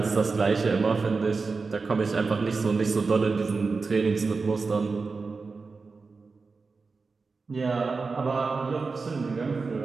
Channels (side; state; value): left; quieter; 4.4 dB